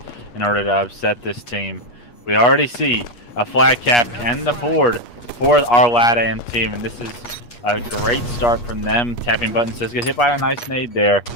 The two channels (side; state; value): right; late; 8.4 ms